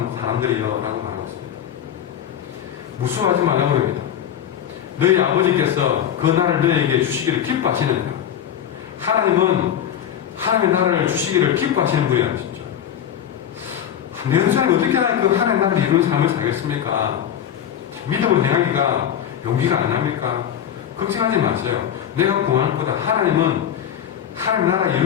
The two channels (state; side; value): quieter; right; 9.6 dB